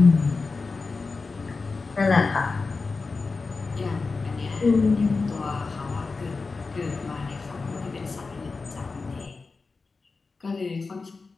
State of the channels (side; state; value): right; quieter; 4.1 dB